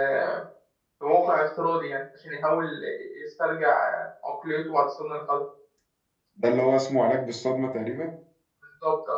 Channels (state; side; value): identical; both; correlation 1.00